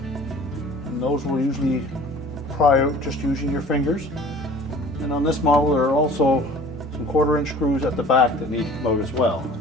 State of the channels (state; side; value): normal; both; correlation 0.46